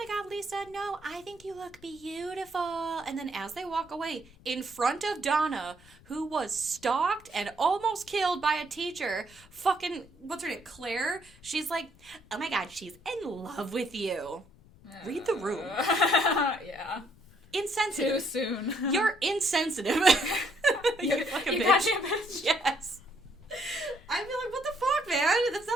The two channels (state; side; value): noise; left; rumble, 25 dB below the sound